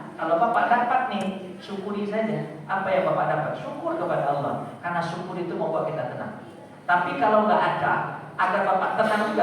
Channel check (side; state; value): both; identical; correlation 1.00